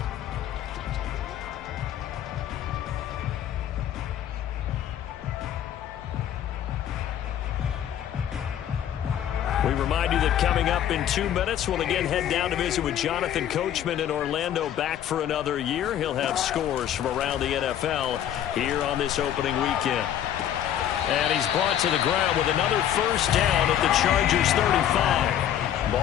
We remind you that coming up in 2 minutes, we'll again head down to visit with Jonathan Coachman in Orlando, back for another year. He'll have scores from around the NFL here on this opening weekend. And he's brought to the ground with another 1st down at the Chargers 35.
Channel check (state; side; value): quieter; right; 10.6 dB